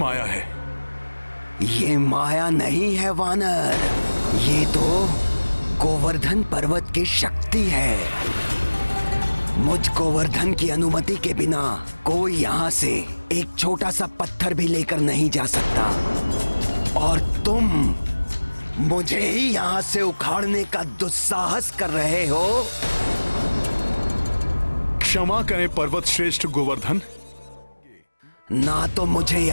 है? ये माया नहीं है वानर, ये तो गोवर्धन पर्वत की शक्ति है। मुझ गोवर्धन की अनुमति के बिना कोई यहाँ से एक छोटा सा पत्थर भी लेकर नहीं जा सकता, और तुम मुझे ही यहाँ से उखाड़ने का दुस्साहस कर रहे हो। क्षमा करें पर्वत श्रेष्ठ गोवर्धन। ना तो मुझे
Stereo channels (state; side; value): inverted; both; correlation -1.00